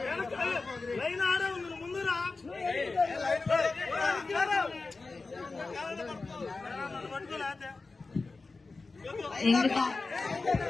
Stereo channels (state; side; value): quieter; right; 3.8 dB